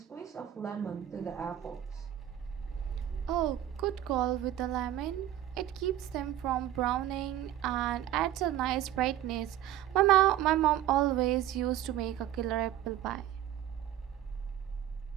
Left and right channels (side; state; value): left; quieter; 12.0 dB